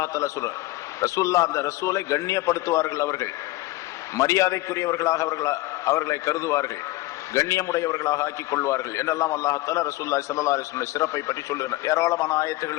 தஆலா சொல்றார். ரசூல்லா அந்த ரசூலை கண்ணியப்படுத்துவார்கள், அவர்கள் மரியாதைக்குரியவர்களாக அவர்களை கருதுவார்கள், கண்ணியமுடையவர்களாக ஆக்கிக் கொள்வார்கள் என்றெல்லாம் அல்லாஹ் ரசூலுல்லாஹி ஸல்லல்லாஹு அலைஹி வஸல்லம் சிறப்பை பற்றி சொல்லுகிறார். ஏராளமான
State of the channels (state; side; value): quieter; right; 18.8 dB